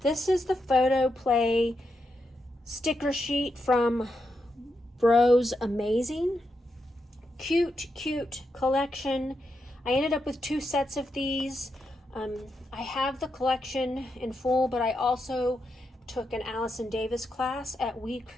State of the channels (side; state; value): both; normal; correlation 0.84